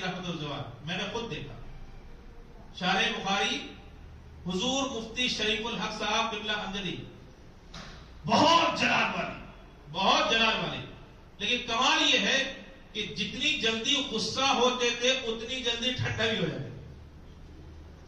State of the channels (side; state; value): both; identical; correlation 1.00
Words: رحمۃ الرضوان، میں نے خود دیکھا شارح بخاری حضور مفتی شریف الحق صاحب قبلہ امجدی، بہت جلال والے، بہت جلال والے. لیکن کمال یہ ہے کہ جتنی جلدی غصہ ہوتے تھے اتنی جلدی ٹھنڈا بھی ہو جاتے.